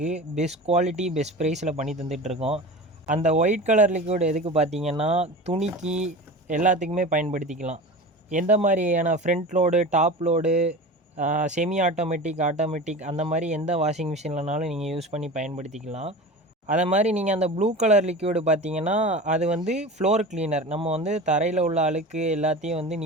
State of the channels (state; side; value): normal; both; correlation 0.33